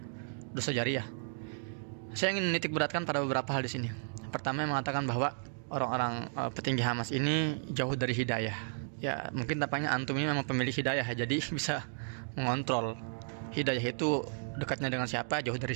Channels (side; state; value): left; silent; digital silence